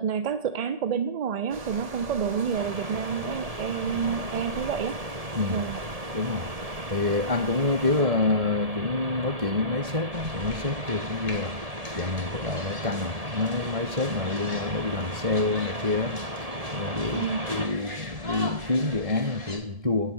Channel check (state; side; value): late; left; 1.7 ms